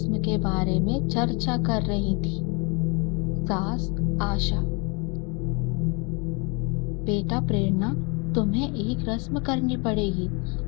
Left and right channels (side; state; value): right; quieter; 31.3 dB